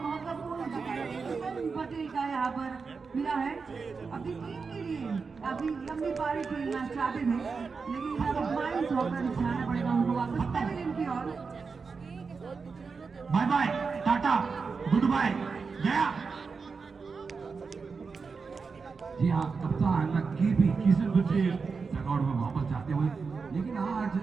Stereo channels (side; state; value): left; quieter; 4.9 dB